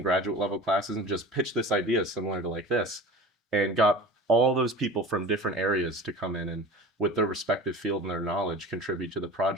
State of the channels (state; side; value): normal; both; correlation 0.37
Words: graduate level classes and just pitched this idea similar to like this and got all those people from different areas to come in and with their respective field and their knowledge contribute to the